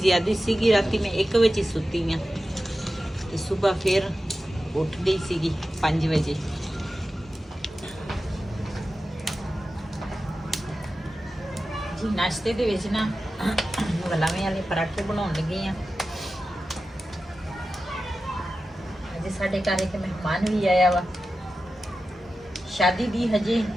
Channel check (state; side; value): normal; both; correlation 0.93